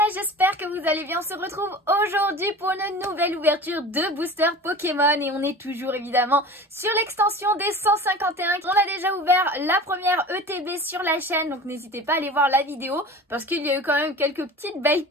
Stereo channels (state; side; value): normal; both; correlation 0.37